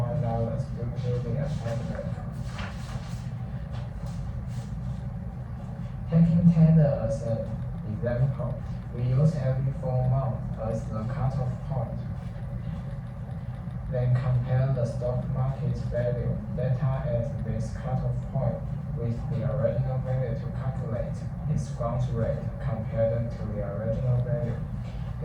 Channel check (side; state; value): both; identical; correlation 1.00